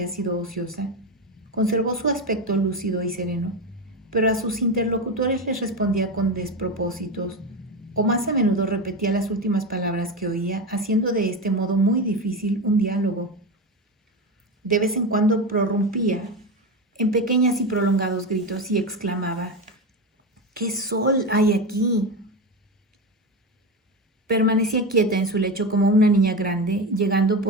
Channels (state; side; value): normal; both; correlation 0.18